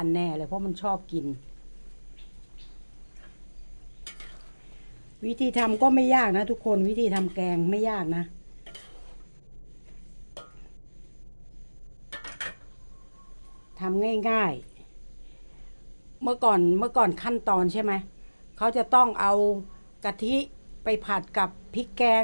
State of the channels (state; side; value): inverted; both; correlation -1.00